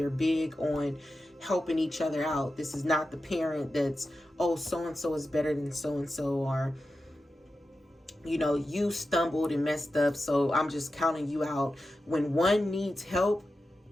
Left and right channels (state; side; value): normal; both; correlation 0.91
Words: big on helping each other out. This is not the parent that's, oh, so-and-so is better than so-and-so, or, you know, you stumbled and messed up, so I'm just counting you out. When one needs help,